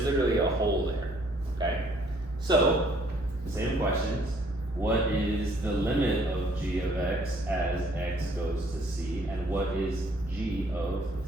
literally a hole there, okay? So, same questions. What is the limit of g of x as x goes to c? And what is g of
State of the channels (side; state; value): both; normal; correlation 0.63